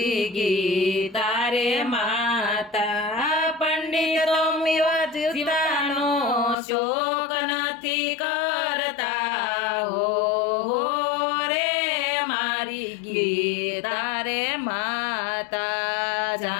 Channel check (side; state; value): right; drops out; at 6.6 s